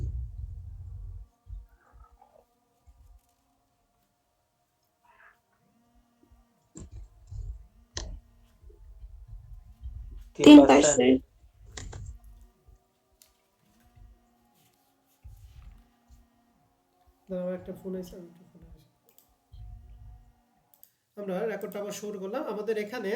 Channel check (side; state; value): both; identical; correlation 1.00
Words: তিন 3%। পার্সেন্ট। আমার একটা ফোন আছে, আমি একটু ফোনে আসি। আমরা রেকর্ডটা আবার শুরু করলাম। আমাদের এখানে